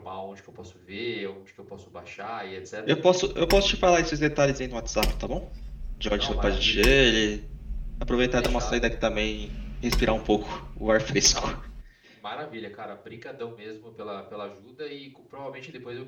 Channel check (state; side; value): identical; both; correlation 1.00